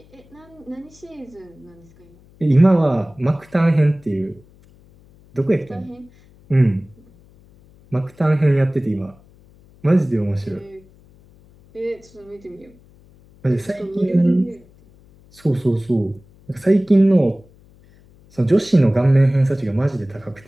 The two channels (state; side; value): noise; left; hum, 28 dB below the sound